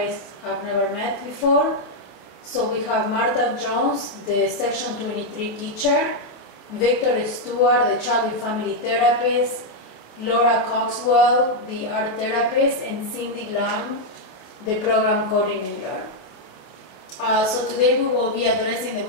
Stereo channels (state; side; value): late; right; 28 ms